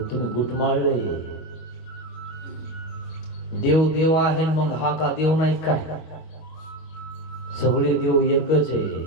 तुम्ही गुटमाळले. देव देव आहे मग हा का देव नाही काय. सगळे देव एकच आहे.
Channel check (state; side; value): late; right; 25 ms